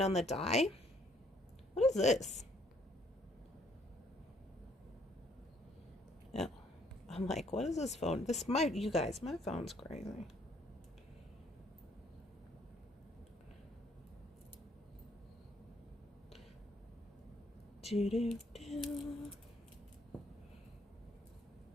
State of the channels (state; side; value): normal; both; correlation 0.66